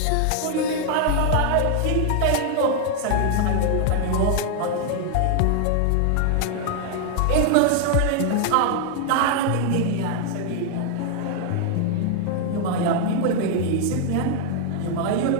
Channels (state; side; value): different; both; correlation 0.00